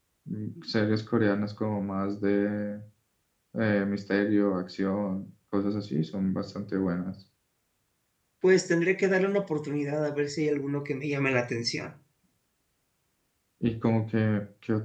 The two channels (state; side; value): identical; both; correlation 1.00